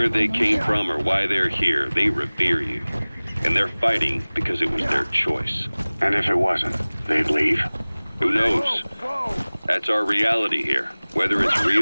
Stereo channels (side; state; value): both; inverted; correlation -1.00